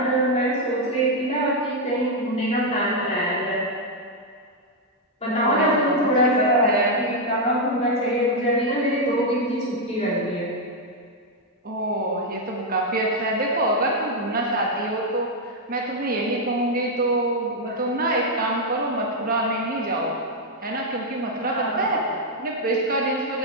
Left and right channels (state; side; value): normal; both; correlation 0.00